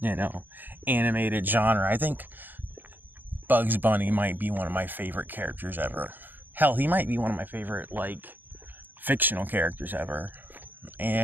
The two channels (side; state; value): left; late; 0.089 ms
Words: animated genre, I think Bugs Bunny might be one of my favorite characters ever. Hell, he might be one of my favorite, fictional characters ever.